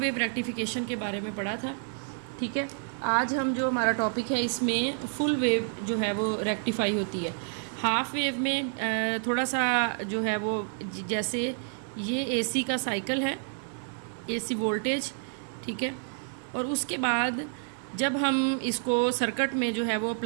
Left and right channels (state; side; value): silent; left; 58 dB below the other